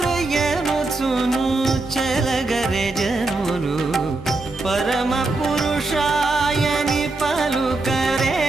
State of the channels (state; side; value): quieter; left; 3.3 dB